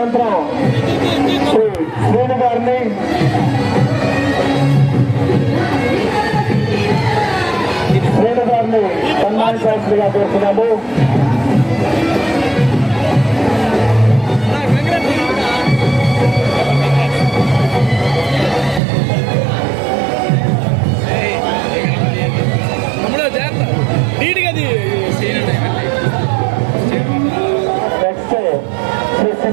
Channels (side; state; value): left; drops out; at 18.8 s